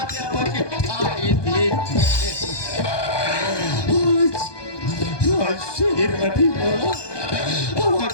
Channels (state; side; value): late; right; 1.2 ms